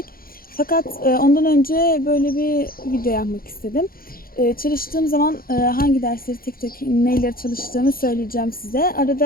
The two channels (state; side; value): late; right; 0.42 ms